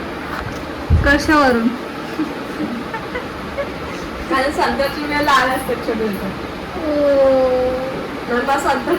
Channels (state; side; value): identical; both; correlation 1.00